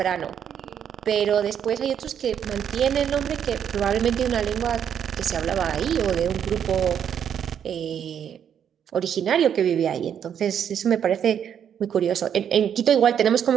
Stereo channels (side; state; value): left; quieter; 8.7 dB